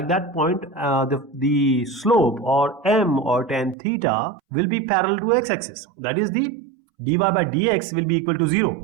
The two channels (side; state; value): left; drops out; at 3.8 s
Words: that point, the slope or m or tan theta will be parallel to x-axis. That is, the dy by dx will be equal to